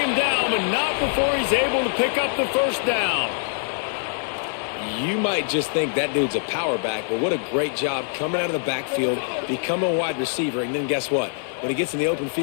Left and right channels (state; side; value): silent; right; 60 dB below the other